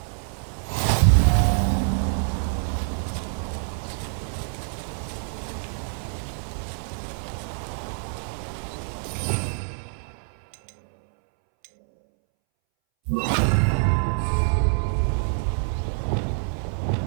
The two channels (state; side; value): silent; left; 61 dB below the other